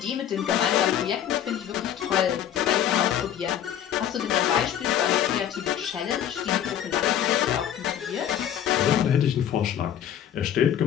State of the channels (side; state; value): right; quieter; 10.2 dB